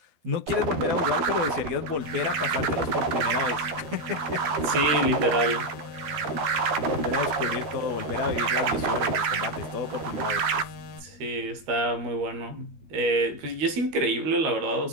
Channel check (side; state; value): left; late; 13 ms